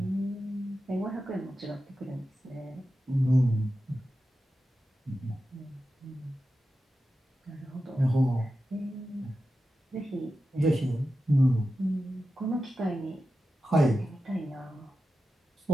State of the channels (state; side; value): normal; both; correlation 0.92